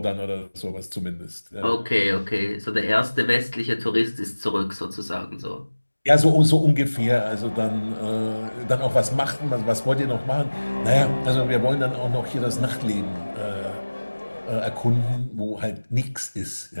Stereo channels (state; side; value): inverted; both; correlation -1.00